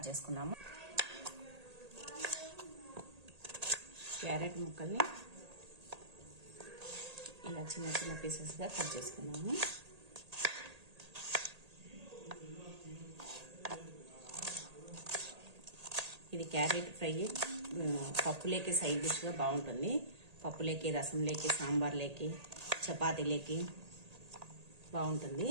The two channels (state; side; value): late; left; 1.8 ms